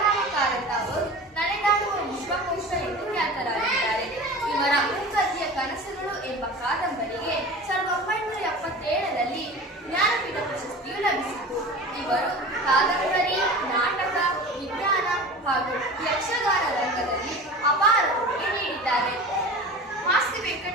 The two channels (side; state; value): both; normal; correlation 0.35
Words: ಕಾರಂತ ಅವರು ನಡೆದಾಡುವ ವಿಶ್ವಕೋಶ ಎಂದು ಖ್ಯಾತರಾಗಿದ್ದಾರೆ. ಇವರ ಮೂಕತಿಯ ಕನಸುಗಳು ಎಂಬ ಕಾದಂಬರಿಗೆ 1977ರಲ್ಲಿ ಜ್ಞಾನಪೀಠ ಪ್ರಶಸ್ತಿಯು ಲಭಿಸಿತು. ಇವರು ಕಾದಂಬರಿ, ನಾಟಕ, ವಿಜ್ಞಾನ ಹಾಗೂ ಯಕ್ಷಗಾನ ರಂಗದಲ್ಲಿ ಅಪಾರ ಕೊಡುಗೆ ನೀಡಿದ್ದಾರೆ. ಮಾಸ್ತಿ